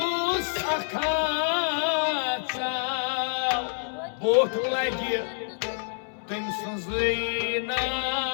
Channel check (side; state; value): right; silent; 60 dB below the other